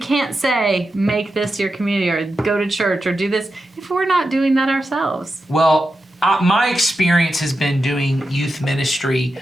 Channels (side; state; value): both; normal; correlation 0.89